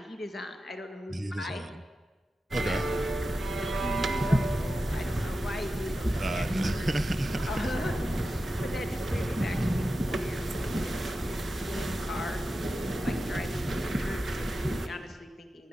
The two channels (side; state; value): both; normal; correlation 0.92